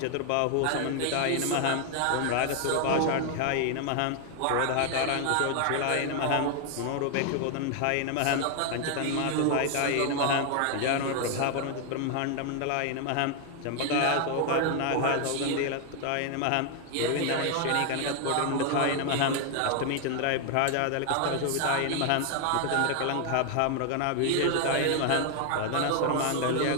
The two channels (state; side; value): different; both; correlation 0.00